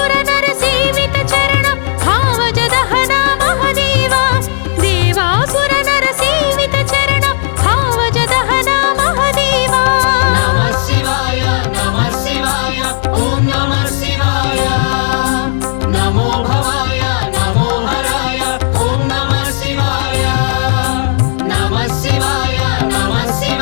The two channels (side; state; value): right; silent; digital silence